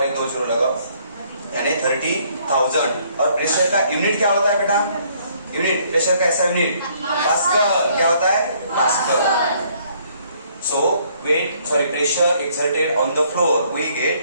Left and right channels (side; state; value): both; inverted; correlation -0.65